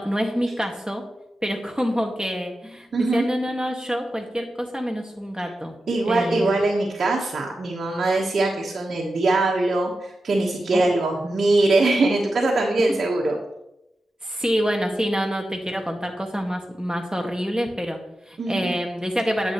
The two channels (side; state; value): both; normal; correlation 0.91